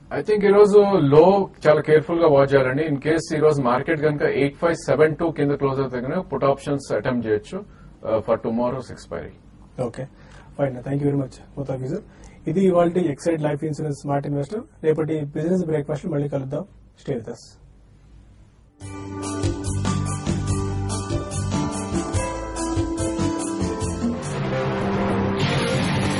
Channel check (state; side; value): identical; both; correlation 1.00